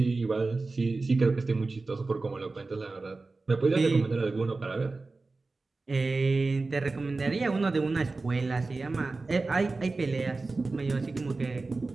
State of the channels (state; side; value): quieter; left; 3.6 dB